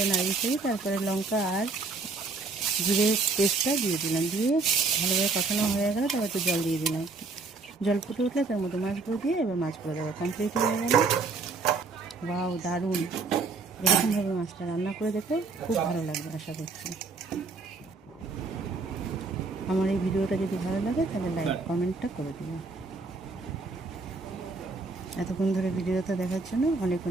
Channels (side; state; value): left; quieter; 4.0 dB